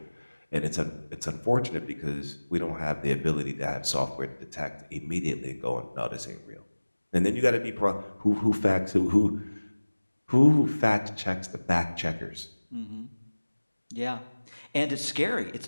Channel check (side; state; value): both; inverted; correlation -1.00